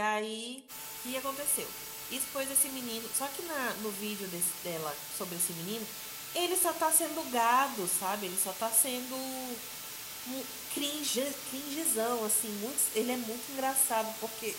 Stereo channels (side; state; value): both; identical; correlation 1.00